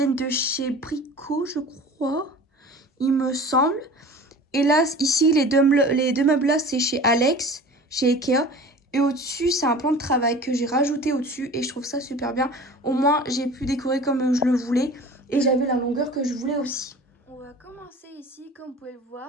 de chez Brico, je crois. Il me semble. Et là, ici, les deux meubles-là, c'est chez Alex, chez Ikea. Et au-dessus, c'est un plan de travail que j'ai rajouté au-dessus. Et je trouve ça super bien. Au moins, j'ai pu décorer comme je le voulais. Et j'avais la longueur que je voulais aussi. On va commencer ici, comme vous pouvez le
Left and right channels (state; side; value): normal; both; correlation 0.40